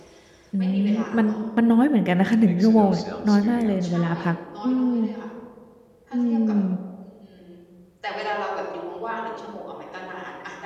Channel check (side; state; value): both; identical; correlation 1.00